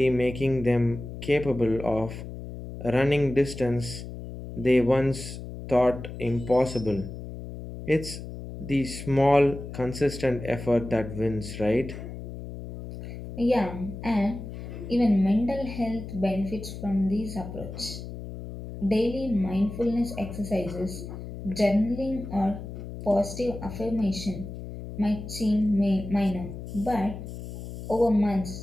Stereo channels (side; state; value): left; noise; hum, 10 dB below the sound